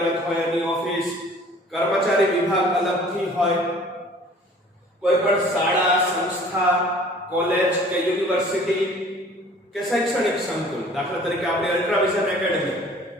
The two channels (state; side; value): normal; both; correlation 0.50